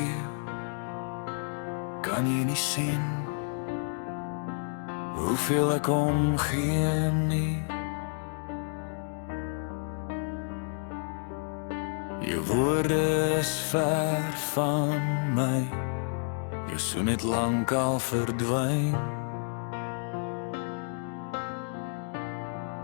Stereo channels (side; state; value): right; silent; 56 dB below the other